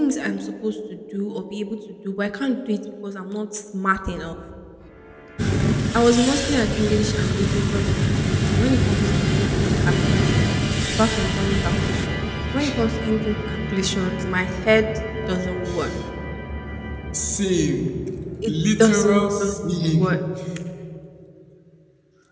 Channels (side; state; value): both; identical; correlation 1.00